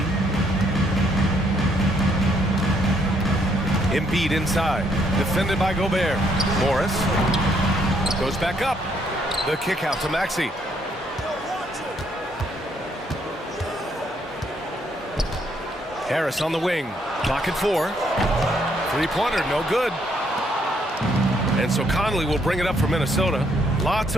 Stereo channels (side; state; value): both; normal; correlation 0.70